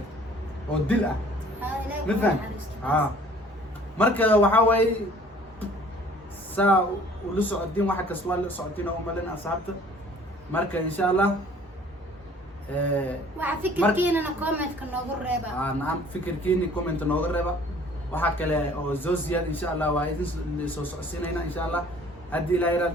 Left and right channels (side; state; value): both; normal; correlation 0.53